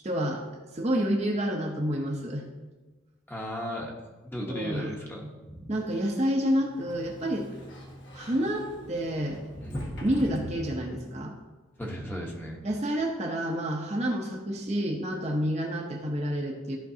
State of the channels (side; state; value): both; normal; correlation 0.73